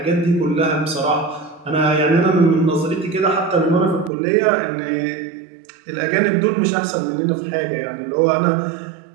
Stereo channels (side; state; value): left; drops out; at 4.1 s